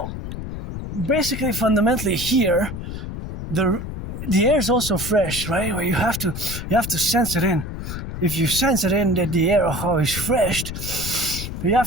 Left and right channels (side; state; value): left; noise; rumble, 7 dB below the sound